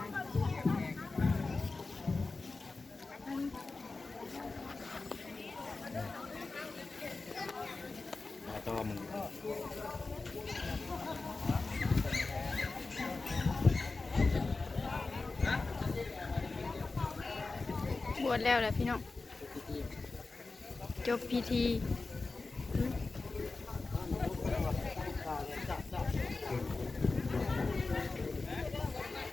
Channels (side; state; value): right; quieter; 3.7 dB